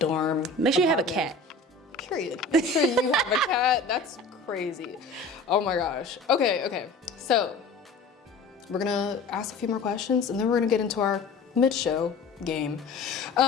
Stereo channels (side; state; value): right; quieter; 3.6 dB